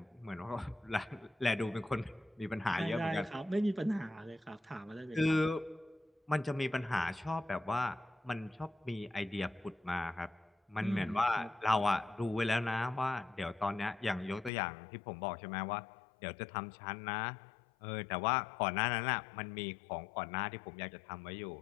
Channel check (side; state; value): right; drops out; at 14.5 s